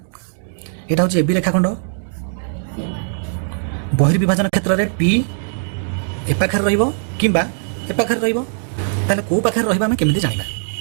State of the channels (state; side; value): silent; left; digital silence